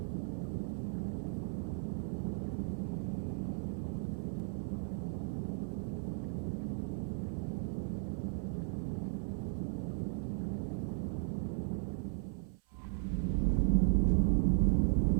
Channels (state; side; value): silent; left; 54 dB below the other